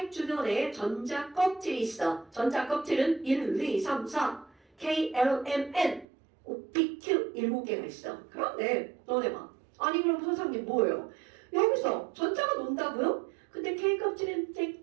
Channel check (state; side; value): drops out; left; at 6.1 s